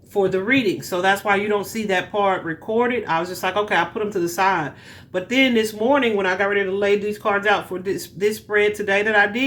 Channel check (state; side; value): identical; both; correlation 1.00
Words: for the reading. So that's why you don't see that part recorded. I was just like, okay, I'll put them to the side. But then this morning when I got ready to lay these cards out for this spread today that I